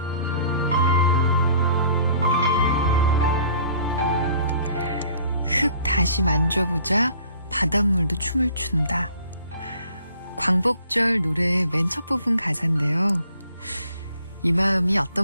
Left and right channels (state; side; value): inverted; both; correlation -0.55